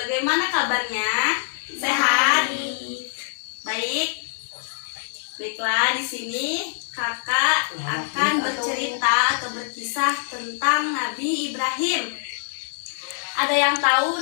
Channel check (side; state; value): right; silent; 63 dB below the other